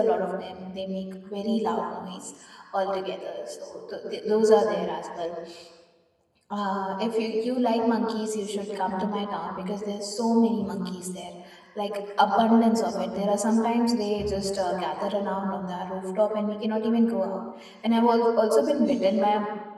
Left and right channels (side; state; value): both; identical; correlation 1.00